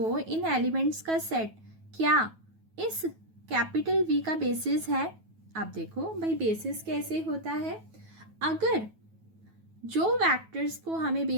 इन एलिमेंट्स का सेट क्या इस कैपिटल V का बेसिस है। आप देखो भाई बेसिस कैसे होता है, अगर जो वेक्टर्स को हमें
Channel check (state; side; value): late; left; 9.2 ms